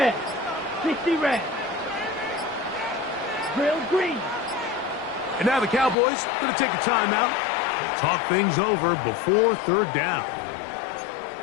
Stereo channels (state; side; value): drops out; right; at 6.0 s